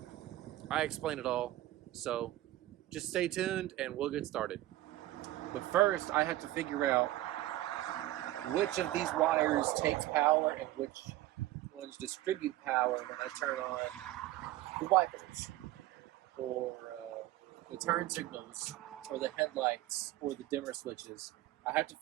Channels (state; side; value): quieter; left; 15.8 dB